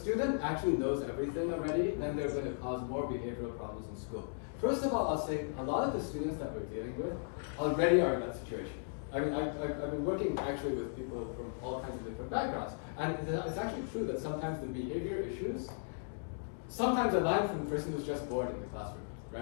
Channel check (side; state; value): right; silent; digital silence